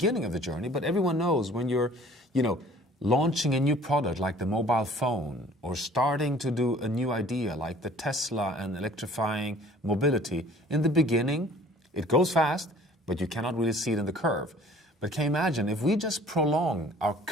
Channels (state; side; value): normal; both; correlation 0.51